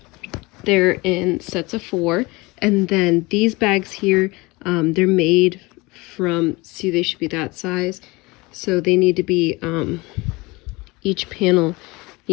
They're in sets of 4. And then these bags here, they're made from, see, they should be that size. So they need to be, each panel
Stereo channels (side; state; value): right; quieter; 23.7 dB